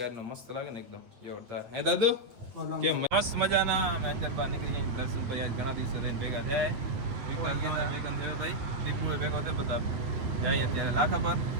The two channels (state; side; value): late; left; 8.7 ms